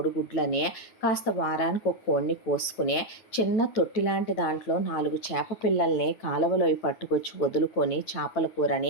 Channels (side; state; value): right; late; 9.1 ms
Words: కాస్త వారానికి ఒక కోడిని కోసుకుని చిన్న తొట్టి లాంటి దాంట్లో 4 చేప పిల్లల్ని కాలువలో పట్టుకొచ్చి వదులుకొని చేపల